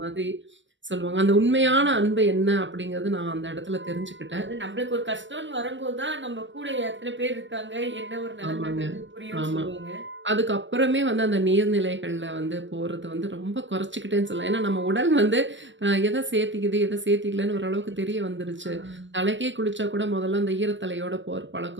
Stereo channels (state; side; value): late; left; 0.54 ms